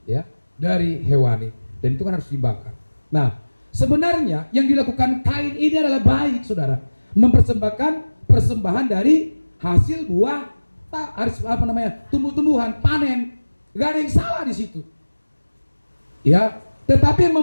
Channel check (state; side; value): inverted; both; correlation -1.00